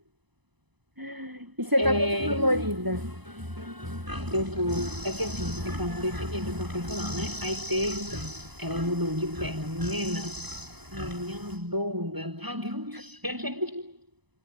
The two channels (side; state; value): left; late; 1.0 ms